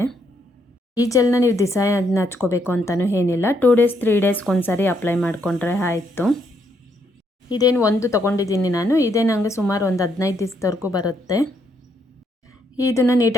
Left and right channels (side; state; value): both; normal; correlation 0.74